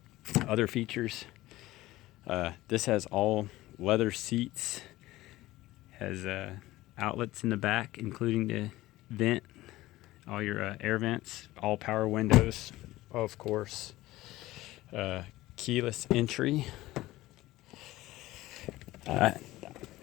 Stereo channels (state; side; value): quieter; right; 17.4 dB